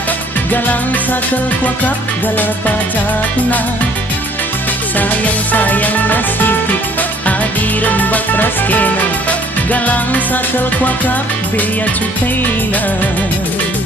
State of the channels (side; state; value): both; normal; correlation 0.59